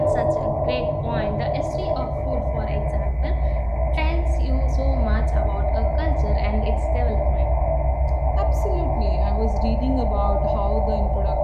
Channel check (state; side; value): identical; both; correlation 1.00